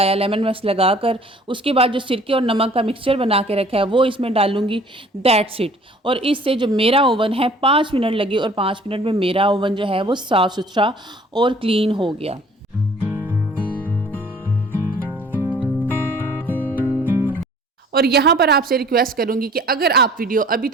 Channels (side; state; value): both; normal; correlation 0.53